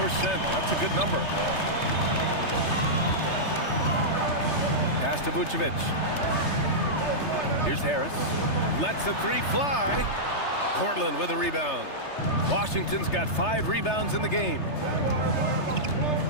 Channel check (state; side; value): late; right; 3.3 ms